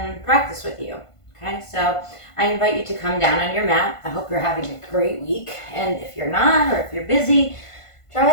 practice with you. Okay, so I invite you to come down on your mat. I hope you're having a great week, and if you're not, or if you're busy, try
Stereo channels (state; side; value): late; right; 1.5 ms